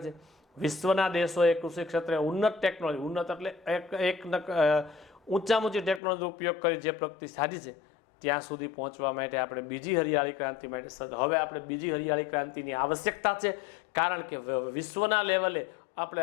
છે. વિશ્વના દેશોએ કૃષિ ક્ષેત્રે ઉન્નત ટેકનોલોજી, ઉન્નત એટલે ઊંચામાં ઊંચી ટેકનોલોજીનો ઉપયોગ કરી જે પ્રગતિ સાધી છે, ત્યાં સુધી પહોંચવા માટે આપણે બીજી હરિયાળી ક્રાંતિ માટે હવે આપણે બીજી હરિયાળી ક્રાંતિની આવશ્યકતા છે. કારણ કે વિશ્વના લેવલે આપણે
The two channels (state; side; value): drops out; right; at 6.0 s